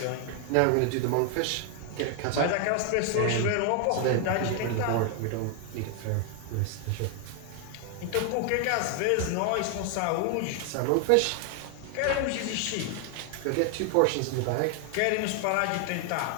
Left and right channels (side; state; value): both; different; correlation 0.00